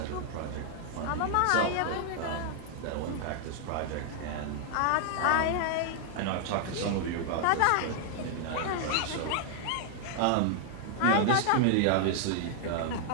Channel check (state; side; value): different; both; correlation 0.00